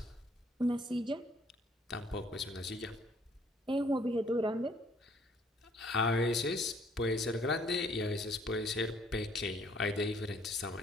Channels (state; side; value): normal; both; correlation 0.62